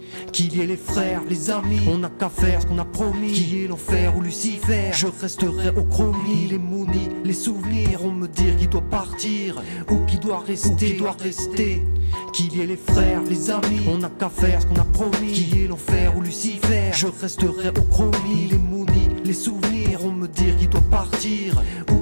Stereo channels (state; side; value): inverted; both; correlation -1.00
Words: Qu'il y ait les frères, les amis, on n'a qu'à faire ce qu'on a promis. Qu'il y ait l'enfer ou Lucifer, je resterai au chromie. Les mounis, les souvenirs, on me dire qu'il doit partir ou qu'il doit rester, Qu'il y ait les frères, les amis, on n'a qu'à faire ce qu'on a promis. Qu'il y ait l'enfer ou Lucifer, je resterai au chromie. Les mounis, les souvenirs, on me dire qu'il doit partir